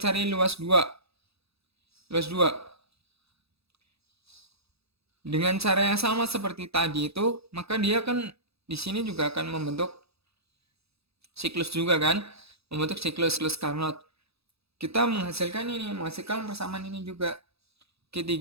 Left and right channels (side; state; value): left; late; 0.78 ms